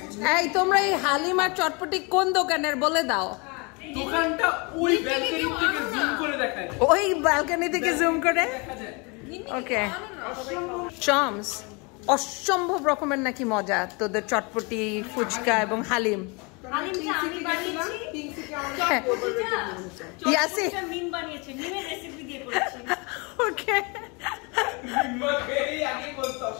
এই তোমরা এই হালিম আর চটপটি কোন দোকানের বলে দাও। দোকানটা ওই ব্যালকনি থেকে জুম করে দেখায়, ওই ব্যালকনি থেকে জুম করে। ওকে চমস, অসম্ভব রকমের নাকি মজা তোদের চটপটি ফুচকা এবং হালিম। ওকে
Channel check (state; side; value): quieter; right; 30.2 dB